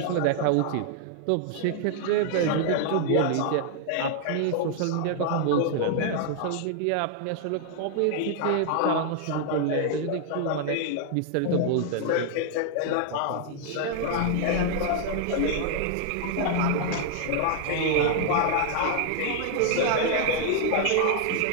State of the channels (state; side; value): different; both; correlation 0.00